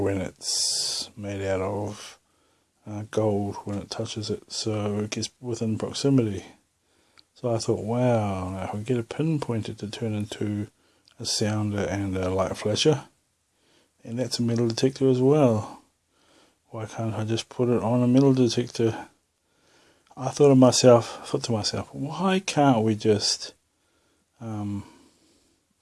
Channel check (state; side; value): identical; both; correlation 1.00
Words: it's made out of gold when it touches it, so it gets within proximity. So I thought, wow, now if I get a pinpointer to turn into a sounder and a light flasher, and that's a metal detector as well, why can't I just put it on a metal detector? I thought to myself, why can't we just